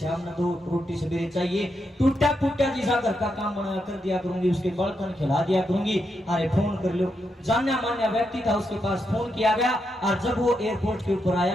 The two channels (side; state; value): both; normal; correlation 0.83